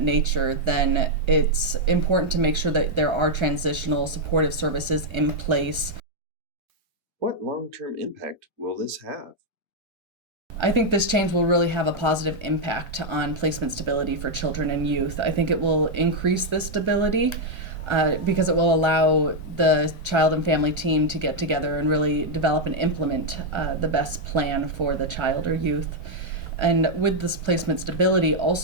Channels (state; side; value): late; left; 1.3 ms